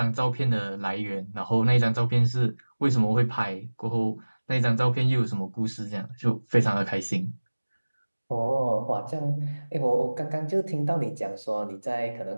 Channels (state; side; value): inverted; both; correlation -1.00